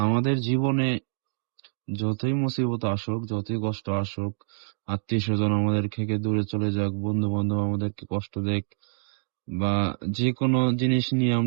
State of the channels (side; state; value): left; silent; digital silence